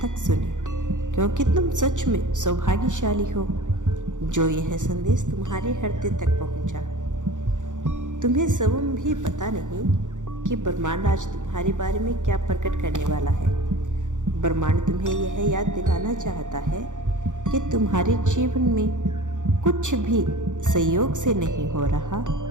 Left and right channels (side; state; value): left; late; 0.86 ms